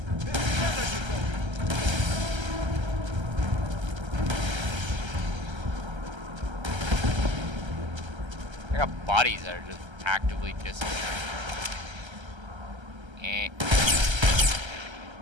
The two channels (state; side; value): late; left; 1.3 ms